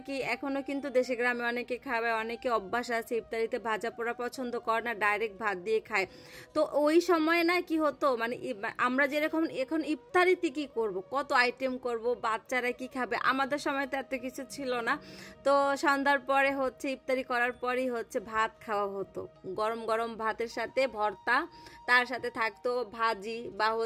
কি এখনো কিন্তু দেশে গ্রামে অনেকে খাবে, অনেকে অভ্যাস আছে ইফতারিতে ভাজা পোড়া পছন্দ করে না, ডাইরেক্ট ভাত দিয়ে খায়। তো ওই সময় না কি হতো, মানে আমরা যেরকম এখন ইফতারিতে কি করব, কত আইটেম করব, বাচ্চারা কি খাবে, আমাদের সময় তো এত কিছু ছিল না। তো সন্ধ্যার পরে হচ্ছে ইফতারি করার পরই হচ্ছে ভাত খাওয়া হতো, গরম গরম ভাতের সাথে ভর্তা, তার সাথে থাকতো ভাজি বা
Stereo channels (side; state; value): both; identical; correlation 1.00